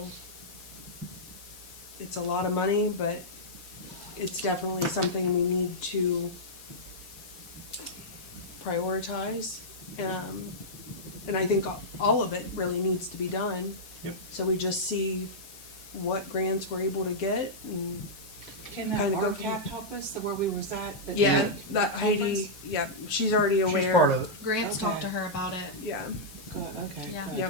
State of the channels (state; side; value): noise; left; hiss, 17 dB below the sound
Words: it's a lot of money, but it's definitely something we need to prioritize. and I think all of it really needs to be done. Yep. So we just see what grants we're able to get, and Can that Kinda go from- RCAP help us, the where we was at? the- yeah, that Heidi, yeah, she's already aware. She's part of it. Grants Okay. talked to her about it. Yeah, Good, okay. Yeah. good.